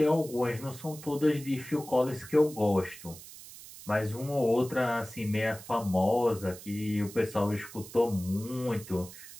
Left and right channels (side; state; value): right; noise; hiss, 16 dB below the sound